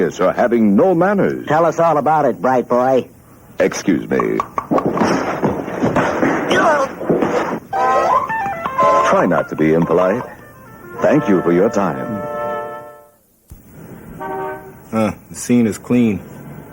or having no manners. Tell us all about it, bright boy. Excuse me. Try not to be impolite. Thank you for your time. The scene is clean.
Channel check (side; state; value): both; identical; correlation 1.00